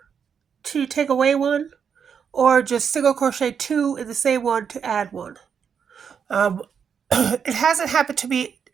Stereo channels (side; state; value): left; quieter; 7.1 dB